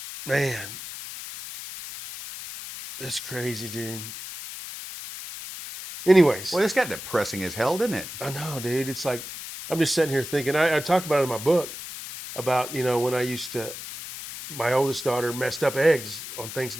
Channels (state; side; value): noise; left; hiss, 10 dB below the sound